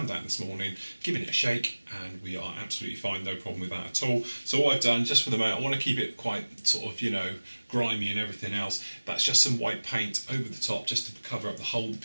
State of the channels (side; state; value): both; inverted; correlation -1.00